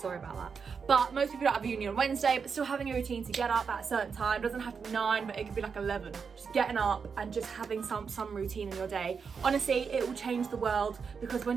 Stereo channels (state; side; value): quieter; left; 5.8 dB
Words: about that. But most people don't have uni on Wednesday, but still having a routine to get up at a certain time. It doesn't have to be 9, but it could be like 11. Just getting up and just having some routine in your day. Honestly, it will change the world, because